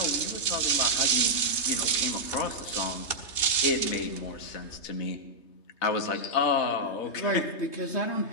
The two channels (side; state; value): right; late; 3.3 ms